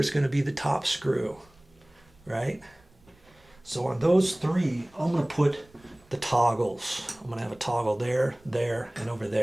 going to be the top screw, right? So on those 3, I'm going to put the toggles. I'm going to have a toggle there, there, and over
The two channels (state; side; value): noise; right; rumble, 29 dB below the sound